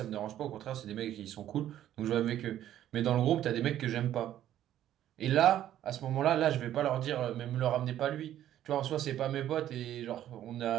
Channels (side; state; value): left; quieter; 11.9 dB